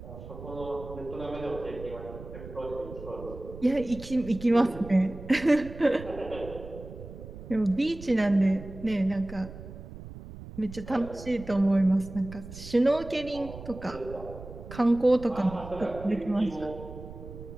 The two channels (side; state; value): right; noise; rumble, 13 dB below the sound